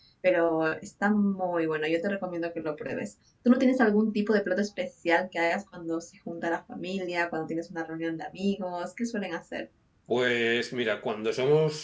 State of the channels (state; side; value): identical; both; correlation 1.00